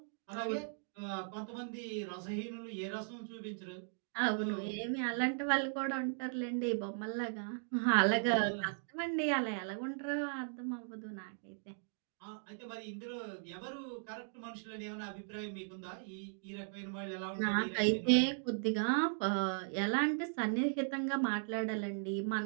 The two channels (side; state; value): left; silent; digital silence